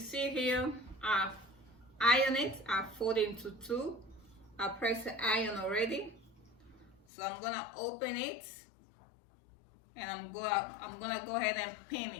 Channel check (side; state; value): right; drops out; at 7.0 s